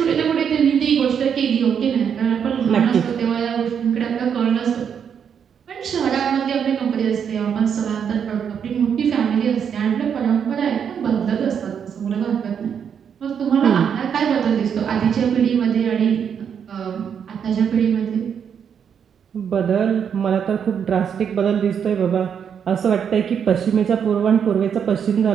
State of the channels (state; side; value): quieter; left; 7.7 dB